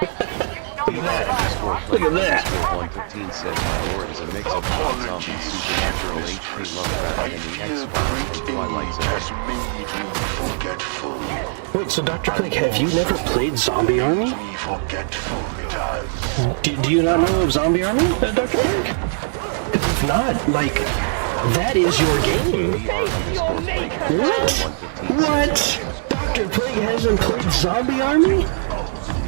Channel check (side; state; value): left; silent; digital silence